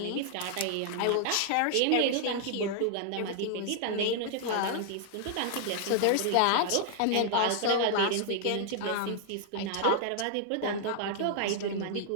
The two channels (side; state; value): both; different; correlation -0.01